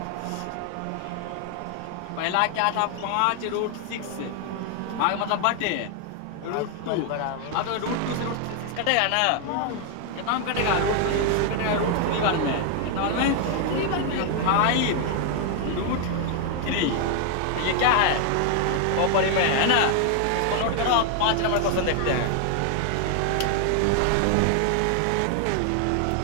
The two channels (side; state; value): both; different; correlation 0.00